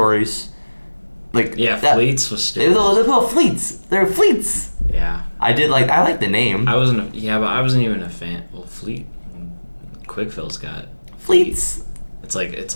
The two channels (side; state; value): both; inverted; correlation -1.00